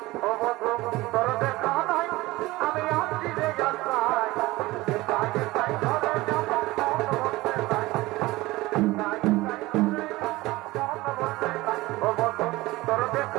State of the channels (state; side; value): quieter; left; 19.6 dB